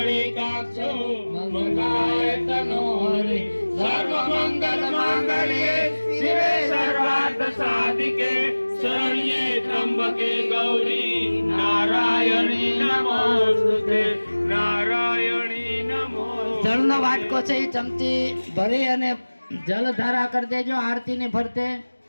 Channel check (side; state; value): both; inverted; correlation -1.00